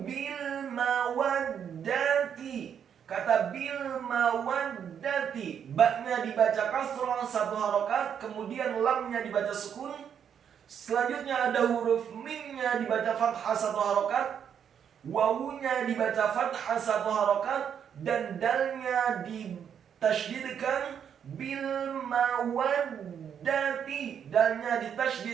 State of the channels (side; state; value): left; quieter; 8.2 dB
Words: bil mawaddati. Kata bil mawaddati, ba-nya dibaca kasrah 1 harokat, kemudian lamnya dibaca sukun. Selanjutnya ada huruf mimnya dibaca fathah 1 harokat, wawunya dibaca fathah 1 harokat, dan dalnya ditasydidkan bil mawaddati, dalnya